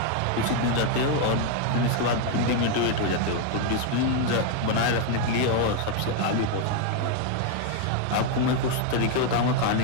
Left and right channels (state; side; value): different; both; correlation 0.01